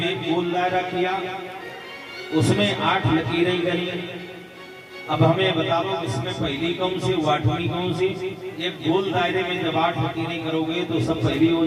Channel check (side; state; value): both; identical; correlation 1.00